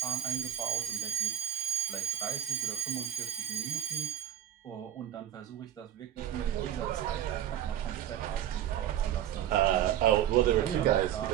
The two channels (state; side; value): quieter; left; 11.0 dB